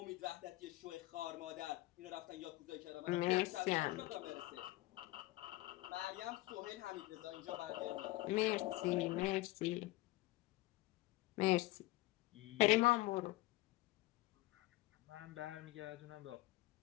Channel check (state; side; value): quieter; right; 19.1 dB